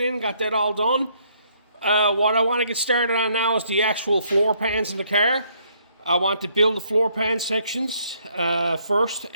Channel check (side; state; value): both; inverted; correlation -0.68